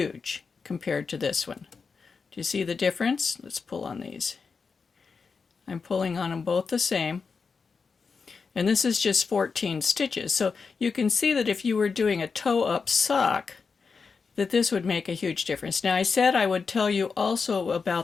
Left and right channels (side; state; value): right; quieter; 5.1 dB